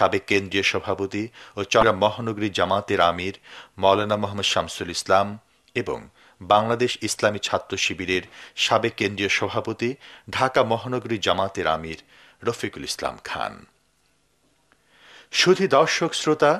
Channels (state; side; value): identical; both; correlation 1.00